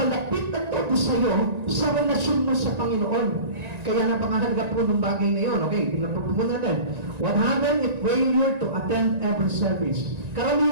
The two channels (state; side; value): late; left; 1.9 ms